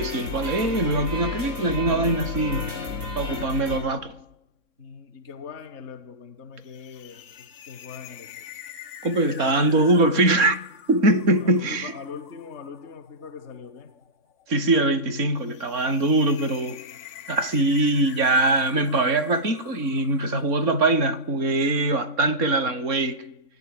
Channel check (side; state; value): left; late; 3.6 ms